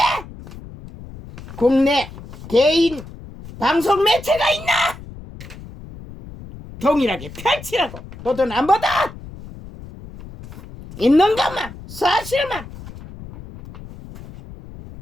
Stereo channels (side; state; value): left; noise; rumble, 16 dB below the sound